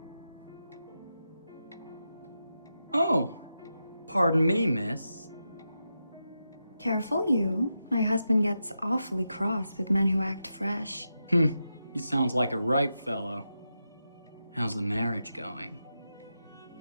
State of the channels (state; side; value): inverted; both; correlation -0.88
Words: Oh, pardon me, miss. Careful you. My husband gets awfully cross with men who act fresh. He sounds like a ripe fellow. How's the marriage going?